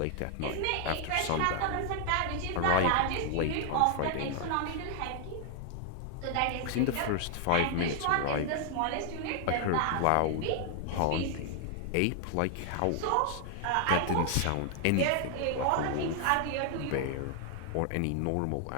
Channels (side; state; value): both; different; correlation 0.00